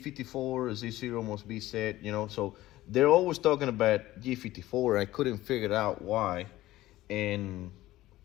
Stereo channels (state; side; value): quieter; right; 16.2 dB